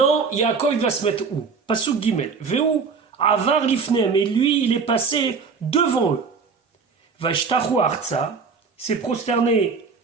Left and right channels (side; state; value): left; quieter; 5.2 dB